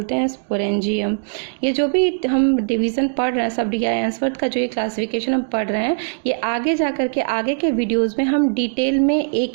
हैं स्पोरेंजियम। ये जो भी हम डिवीजन पढ़ रहे हैं, सब एंसवर्थ का जो ये क्लासिफिकेशन हम पढ़ रहे हैं, ये आगे जाकर के आगे के वीडियोज में हम डिटेल में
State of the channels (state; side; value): silent; left; digital silence